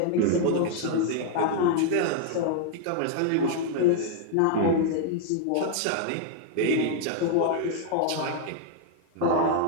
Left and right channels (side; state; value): both; different; correlation 0.00